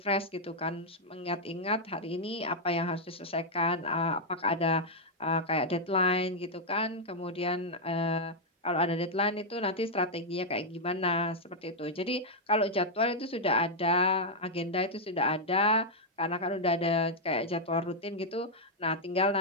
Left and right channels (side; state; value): both; normal; correlation -0.02